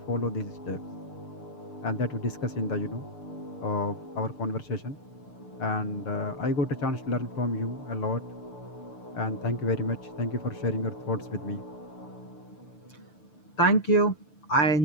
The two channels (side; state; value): right; late; 6.8 ms